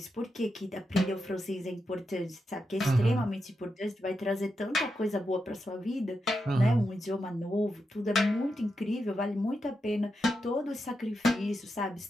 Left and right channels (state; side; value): normal; both; correlation 0.86